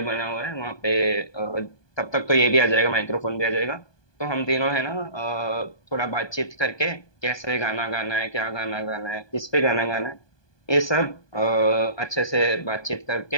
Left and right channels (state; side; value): late; right; 1.2 ms